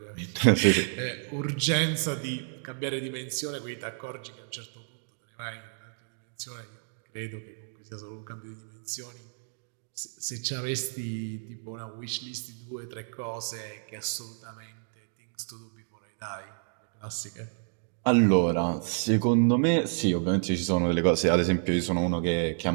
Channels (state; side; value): silent; left; digital silence